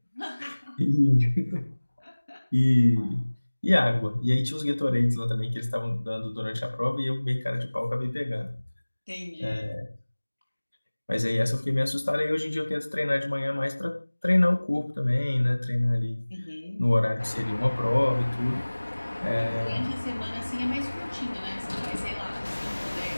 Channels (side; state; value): both; inverted; correlation -1.00